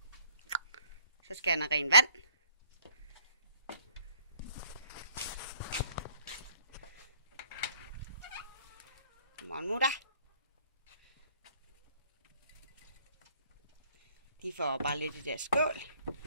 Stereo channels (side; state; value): both; inverted; correlation -0.59